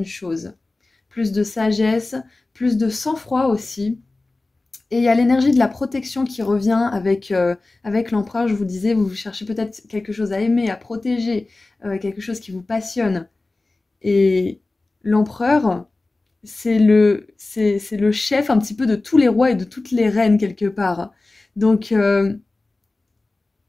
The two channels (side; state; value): right; quieter; 3.2 dB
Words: choses. Plus de sagesse, plus de sang-froid aussi. Et il y a l'énergie de la protection qui revient avec l'empereur. Je vous disais, vous cherchez peut-être quelque chose à aimer, à protéger, quelque chose qui vous passionne. Et l'empereur, c'est le chef un petit peu de tous les rois et de toutes les reines quelque part. Donc,